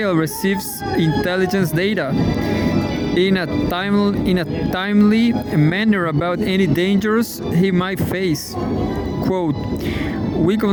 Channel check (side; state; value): both; identical; correlation 1.00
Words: receives intelligence data in a timely manner about any dangers he might face. Quote, we